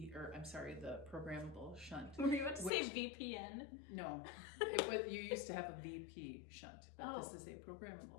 programmable shunt. Were you about to say VPN? No, you used to have a VP shunt, but this is a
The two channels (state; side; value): drops out; right; at 2.7 s